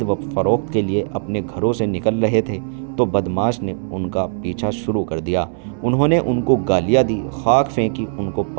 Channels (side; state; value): left; silent; 65 dB below the other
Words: و فروخت کے لیے اپنے گھروں سے نکل رہے تھے تو بدماش نے ان کا پیچھا شروع کر دیا۔ انہوں نے ان کو گالیاں دی، خاک پھینکی، ان کو